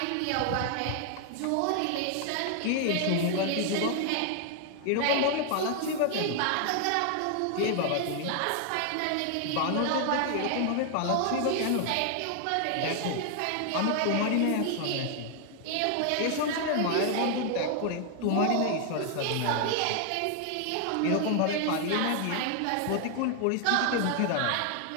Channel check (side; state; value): both; different; correlation 0.00